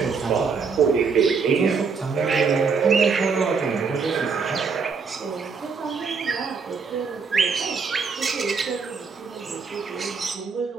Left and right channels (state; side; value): quieter; left; 5.3 dB